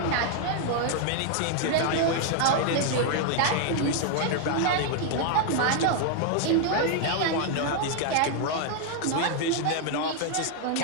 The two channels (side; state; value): both; different; correlation 0.00